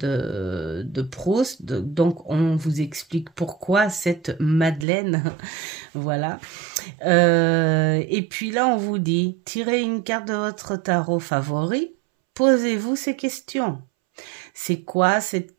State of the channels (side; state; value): left; drops out; at 4.9 s